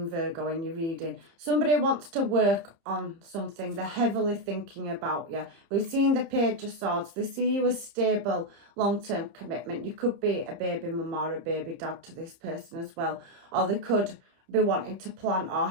Virgo in your reading. Somebody wants to work on something. They're heavily thinking about you. We've seen the Page of Swords. They see you as stable, long-term commitment. You could be a baby mum or a baby dad to this person as well, or they could be wanting to plan or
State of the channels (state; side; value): late; left; 30 ms